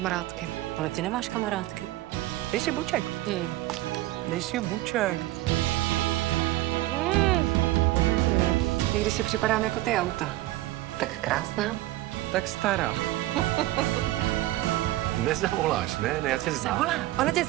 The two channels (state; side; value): quieter; left; 16.7 dB